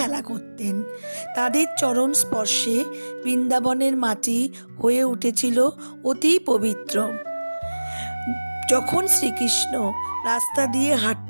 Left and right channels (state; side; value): inverted; both; correlation -1.00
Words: করতেন। তাদের চরণ স্পর্শে বৃন্দাবনের মাটি হয়ে উঠেছিল অতি পবিত্র। যখন শ্রীকৃষ্ণ রাস্তা দিয়ে